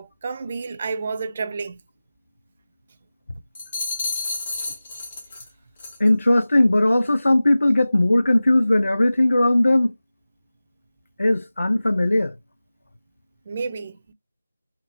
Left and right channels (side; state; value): both; inverted; correlation -0.97